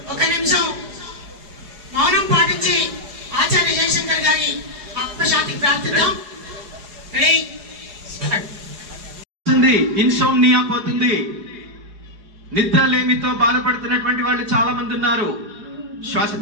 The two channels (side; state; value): left; late; 4.8 ms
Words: ఒక నిమిషం మౌనం పాటించి ఆచార్య జయశంకర్ గారి ఆత్మశాంతికి ప్రార్థిద్దాం. ఇన్సోమ్నియా పోతుంది. నిద్రలేమితో బాధపడుతున్నటువంటి వాళ్ళు చాలా మంది ఉన్నారు. శ్వాస